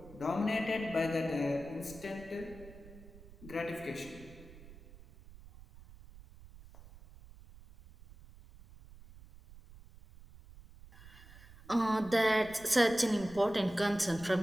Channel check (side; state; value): right; noise; rumble, 20 dB below the sound